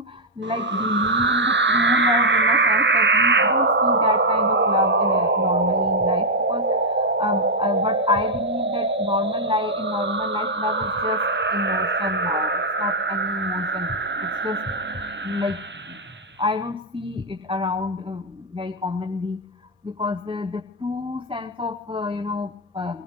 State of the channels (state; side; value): normal; both; correlation -0.01